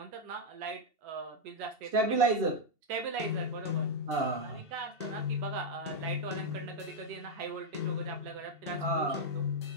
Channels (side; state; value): left; late; 2.7 ms